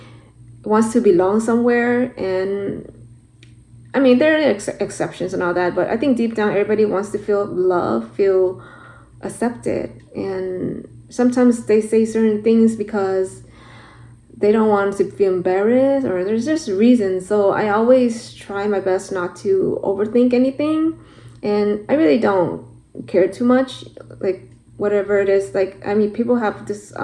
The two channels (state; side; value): identical; both; correlation 1.00